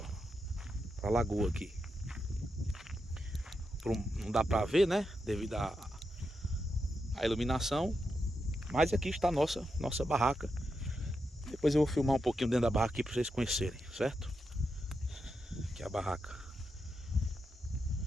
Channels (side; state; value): both; normal; correlation 0.86